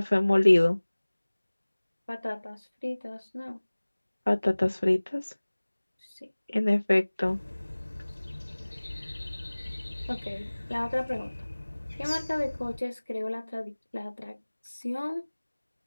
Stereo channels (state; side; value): inverted; both; correlation -1.00